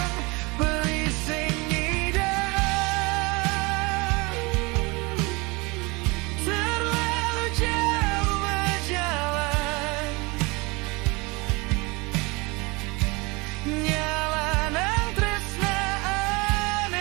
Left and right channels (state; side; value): quieter; left; 26.1 dB